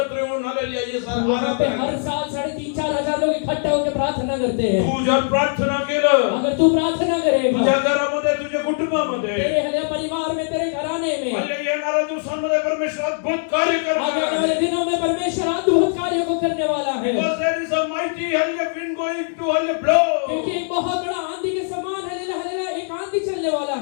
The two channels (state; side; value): silent; right; digital silence